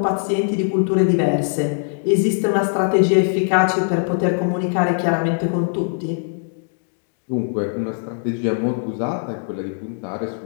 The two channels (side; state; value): right; silent; digital silence